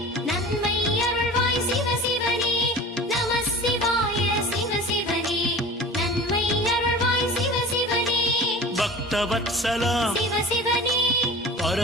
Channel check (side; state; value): both; normal; correlation 0.38